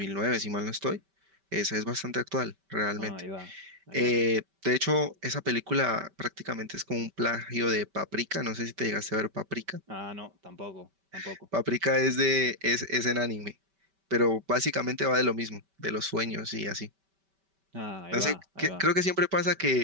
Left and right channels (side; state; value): left; late; 5.1 ms